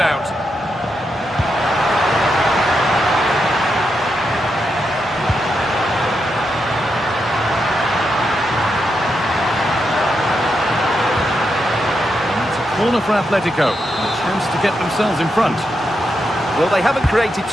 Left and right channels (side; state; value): both; normal; correlation 0.84